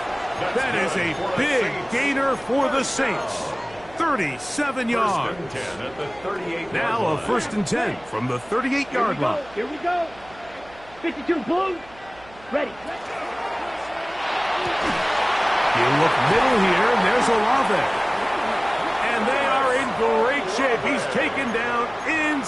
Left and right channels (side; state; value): right; noise; hum, 23 dB below the sound